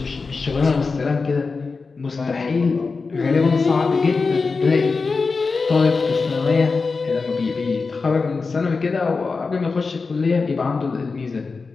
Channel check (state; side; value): quieter; right; 4.4 dB